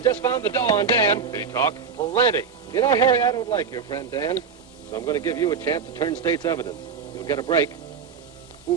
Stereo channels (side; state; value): left; quieter; 5.9 dB